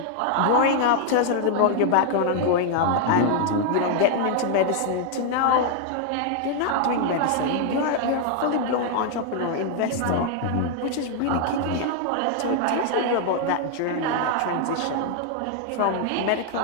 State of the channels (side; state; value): both; different; correlation 0.00